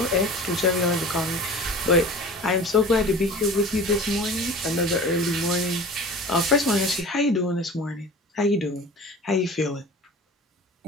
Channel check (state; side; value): normal; both; correlation 0.39